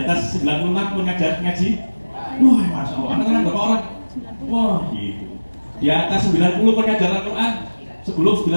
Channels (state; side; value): inverted; both; correlation -1.00